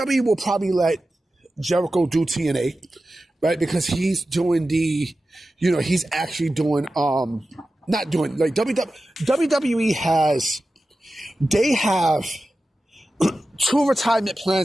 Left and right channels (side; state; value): both; normal; correlation 0.94